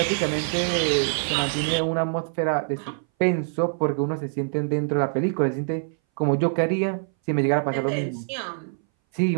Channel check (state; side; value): silent; left; 60 dB below the other